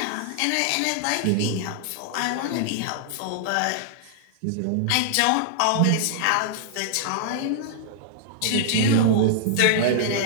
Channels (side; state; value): both; different; correlation -0.01